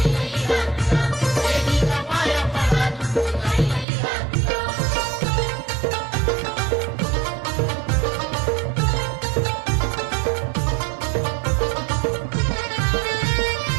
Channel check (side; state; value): left; drops out; at 3.9 s